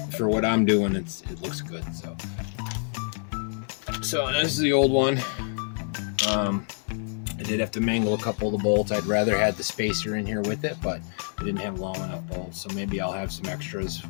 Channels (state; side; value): silent; right; digital silence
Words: for what I'm doing, it looks good. So this is the old one. I did have to mangle a couple of the bolts. I'd rather had the spacer in here with it, but I didn't have long enough bolts, so maybe I'll have some extras